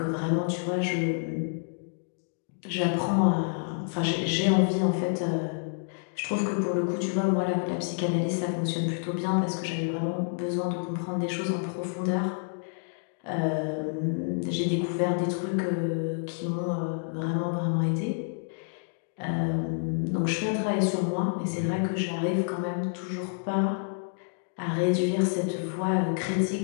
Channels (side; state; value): right; silent; digital silence